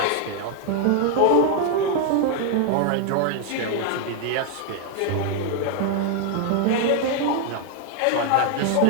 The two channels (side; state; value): both; different; correlation 0.00